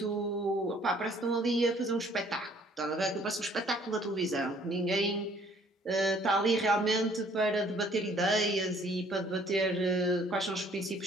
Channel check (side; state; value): both; normal; correlation 0.59